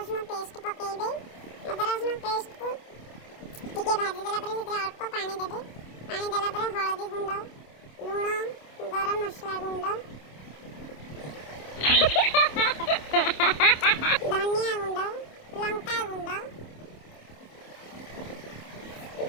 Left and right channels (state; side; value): late; right; 27 ms